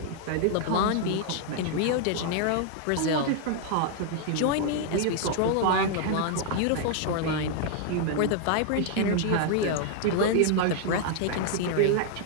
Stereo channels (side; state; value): both; different; correlation 0.00